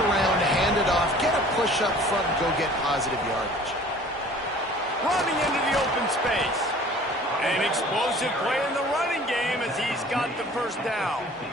around, hand it off, get a push up front, and go get positive yardage. Running into the open space. An explosive play in the running game as he's got the first down.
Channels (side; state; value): both; normal; correlation 0.48